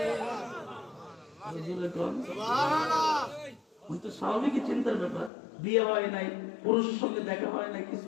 স্বাভাবিক চিন্তার ব্যাপার, বিয়ে হয় নাই, পুরুষের সঙ্গে দেখা হয় নাই,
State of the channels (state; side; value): drops out; right; at 5.3 s